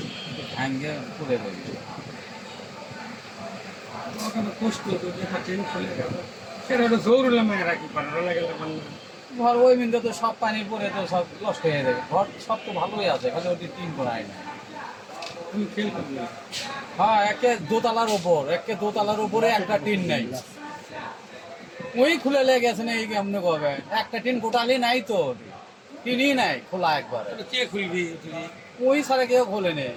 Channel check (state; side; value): identical; both; correlation 1.00